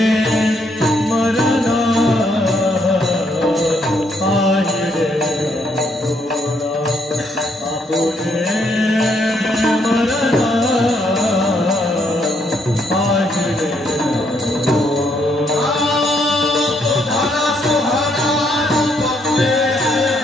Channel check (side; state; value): both; normal; correlation 0.73